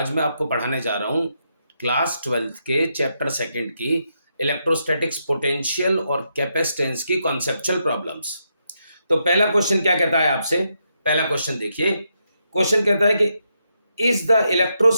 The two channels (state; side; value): inverted; both; correlation -0.81